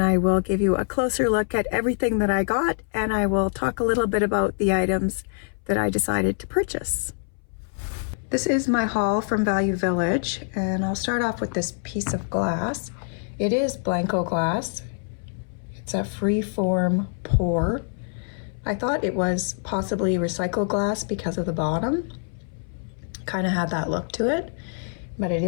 will give you a closer look at everything that I got, and I will talk a little bit about the items that I decided to purchase. This is my haul from Value Village, and I'll start off with this piece of glass. It is Blanco glass. It's a free-form pour. I thought it was possibly recycled glass because of the bottom. Kind of had that look to it, but it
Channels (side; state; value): right; silent; 61 dB below the other